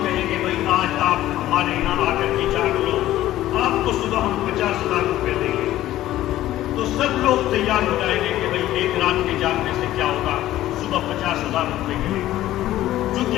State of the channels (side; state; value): right; quieter; 14.3 dB